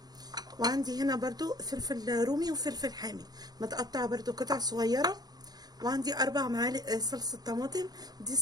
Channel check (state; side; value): late; left; 0.19 ms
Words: وعندي هنا برضو فلفل رومي وفلفل حامي متقطعه برضو قطع صغيره. وعندي 4 معالق صلصه طماطم، دي